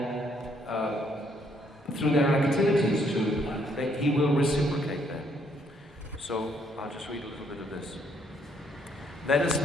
through their activities that he will reciprocate them. So I'll just read a little bit of this. Let us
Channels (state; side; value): normal; both; correlation 0.69